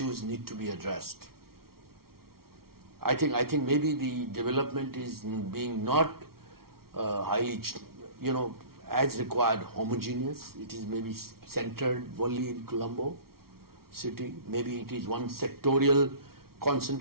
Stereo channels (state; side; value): late; left; 0.94 ms